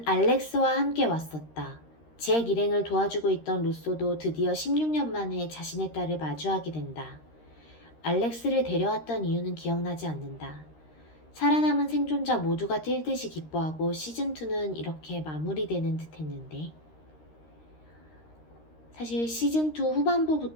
알렉스와 함께 왔었다. 잭 일행을 도와주고 있던 루소도 드디어 16년 만에 자신의 딸을 마주하게 된다. 알렉스를 데려왔던 이유는 기억나지 않는다. 살아남은 생존자 모두가 뛸 듯이 기뻐하고 시즌2는 이렇게 마무리되는 듯 했는데, 사실 시즌2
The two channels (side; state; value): right; late; 13 ms